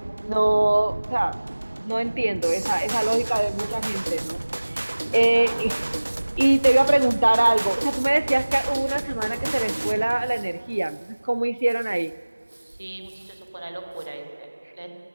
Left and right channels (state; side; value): inverted; both; correlation -1.00